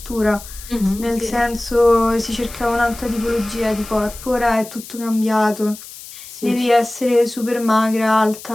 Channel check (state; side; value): noise; left; hiss, 15 dB below the sound